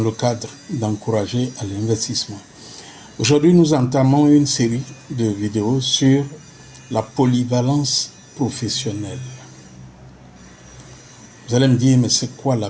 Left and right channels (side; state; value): both; identical; correlation 1.00